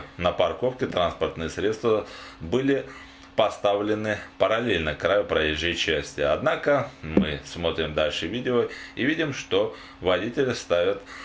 на парковке транспортные средства были поставлены параллельно краю проезжей части. Однако мы смотрим дальше видео и видим, что водители ставят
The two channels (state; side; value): identical; both; correlation 1.00